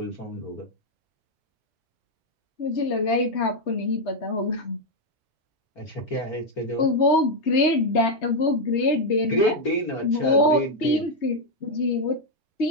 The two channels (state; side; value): normal; both; correlation 0.01